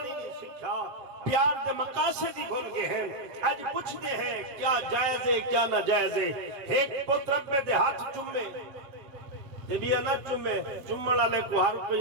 نہیں سکھا پیار دے مقاصد ہی بھول گئے ہیں آج پوچھتے ہیں کیا جائز ہے کیا نہ جائز ہے ایک پوت رب میں دے ہاتھ چمے دے بیا نہ چمے چمڑا لے کو ہر کو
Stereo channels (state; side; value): late; left; 7.4 ms